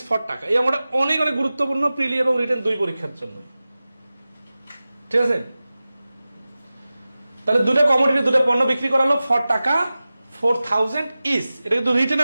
for taka. এই আমরা অনেক অনেক গুরুত্বপূর্ণ প্রিলি এবং রিটেন দুই পরীক্ষার জন্য। ঠিক আছে? তাহলে দুটো কমোডিটি, দুটো পণ্য বিক্রি করা হলো ফর টাকা 4000 ইস। এটা কিন্তু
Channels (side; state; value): both; inverted; correlation -0.96